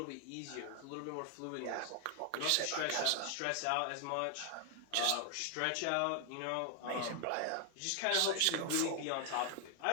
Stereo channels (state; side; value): different; both; correlation 0.00